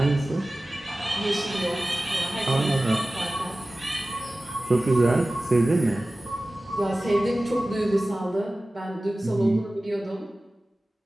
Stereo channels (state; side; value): normal; both; correlation 0.97